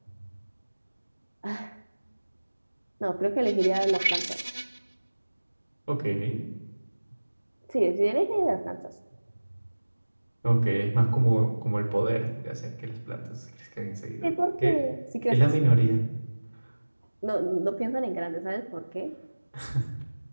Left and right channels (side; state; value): both; inverted; correlation -1.00